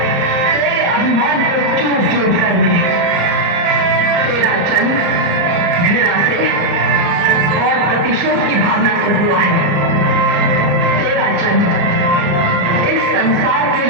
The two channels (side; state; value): left; late; 34 ms